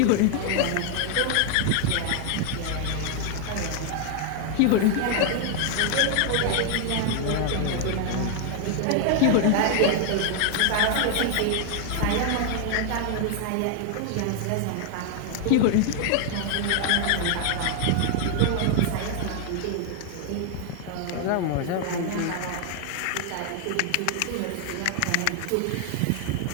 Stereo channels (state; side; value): different; both; correlation 0.00